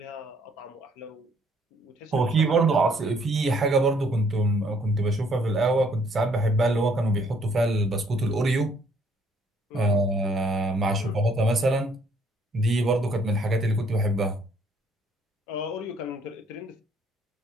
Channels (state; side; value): normal; both; correlation 0.64